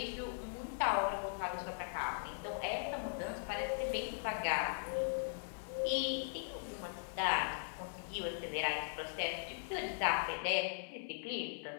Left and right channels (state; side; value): silent; right; 51 dB below the other